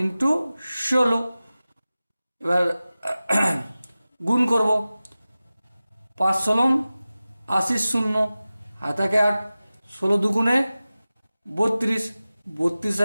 16। এবার গুণ করব, 5 16 80 শূন্য, হাতাকে 8, 16×2 = 32, 32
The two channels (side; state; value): both; inverted; correlation -0.96